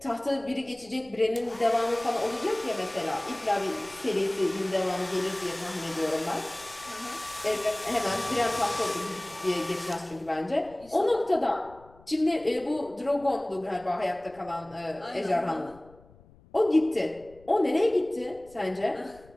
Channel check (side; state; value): left; noise; rumble, 25 dB below the sound